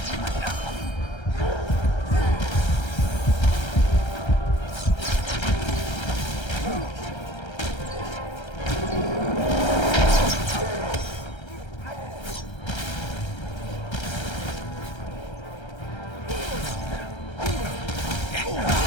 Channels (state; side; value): late; right; 1.3 ms